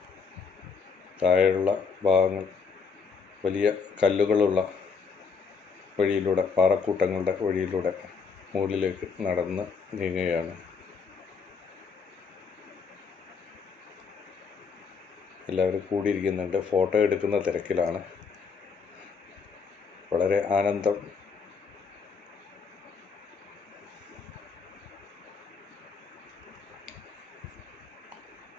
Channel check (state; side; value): quieter; right; 5.5 dB